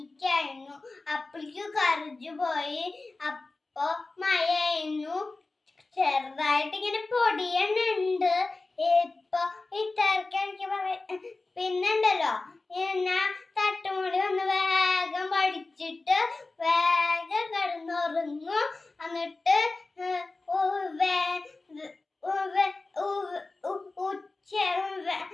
അപ്പോഴേക്കും കറിഞ്ഞു പോയി. അപ്പൊ മഴയായിരുന്നു, ചെറുതായിട്ട് ഇങ്ങനെ പൊടിയുന്നുണ്ട്. ഇപ്പൊ ഇത്തരക്ക് എനിക്ക് പിന്നുണ്ടല്ലോ, ഞാൻ തട്ടുമോളി വന്ന് വേഗം പഠിച്ചിട്ട് വേഗം കിടന്നുറങ്ങും. എന്നിട്ട്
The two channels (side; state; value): right; quieter; 3.4 dB